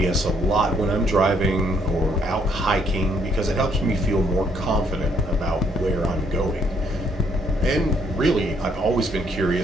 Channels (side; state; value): both; normal; correlation 0.69